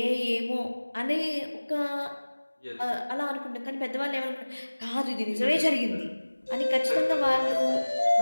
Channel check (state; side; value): inverted; both; correlation -1.00